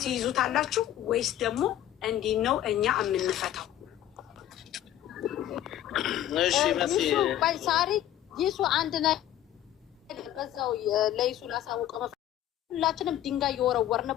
ትይዙታላችሁ ወይስ ደግሞ እንዲህ ነው እኛ የምንፈታው? ሳሪ ይሱ አንድ ነገር በዛው ለይሱ ላሳውቀ ሁላችንም ድንጋይ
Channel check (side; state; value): right; quieter; 12.3 dB